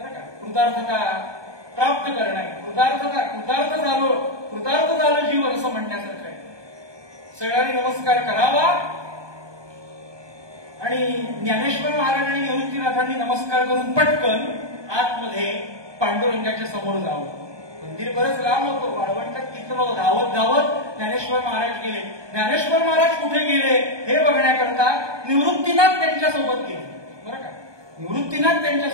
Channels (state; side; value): late; left; 1.2 ms